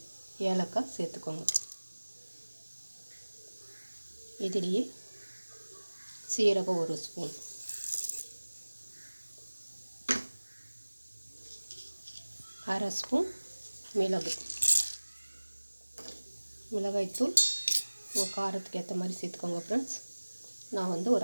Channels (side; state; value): both; inverted; correlation -1.00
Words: ஏலக்காய் சேர்த்துக்கோங்க. இதுலேயே சீரகம் 1 ஸ்பூன், அரை ஸ்பூன் மிளகாய்த்தூள் உங்கள் காரத்துக்கு ஏற்ற மாதிரி சேர்த்துக்கோங்க ஃப்ரெண்ட்ஸ். நான்